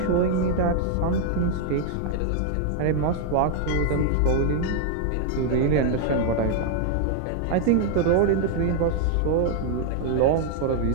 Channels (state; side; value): different; both; correlation 0.00